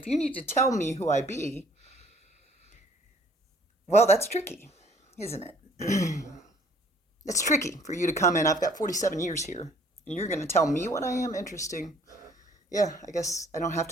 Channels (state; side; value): normal; both; correlation 0.58